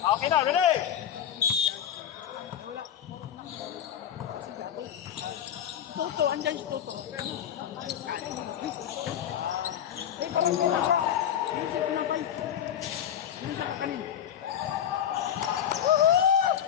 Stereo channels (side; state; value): right; quieter; 9.6 dB